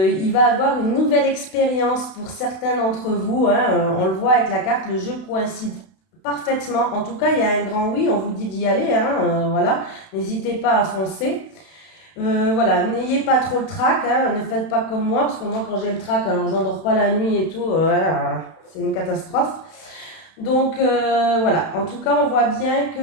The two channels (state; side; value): late; right; 31 ms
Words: va avoir une nouvelle expérience pour certains d'entre vous. Hein, on le voit avec la carte, le jeu coïncide parfaitement. En tout cas, il y a un grand oui, on vous dit d'y aller. Hein, voilà, n'hésitez pas à foncer. Voilà, n'ayez pas trop le trac, hein, ne faites pas comme moi, parce que moi quand j'ai le trac, alors j'endors pas la nuit et tout, c'est une catastrophe. Donc voilà, en tout cas on voit bien